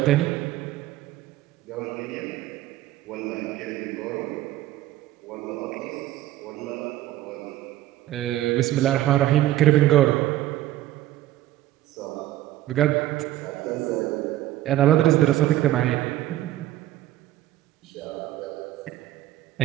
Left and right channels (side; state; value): left; quieter; 14.4 dB